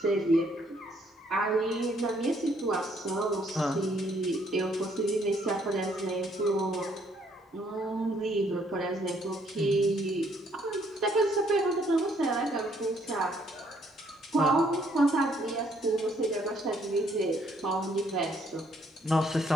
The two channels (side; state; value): both; normal; correlation 0.67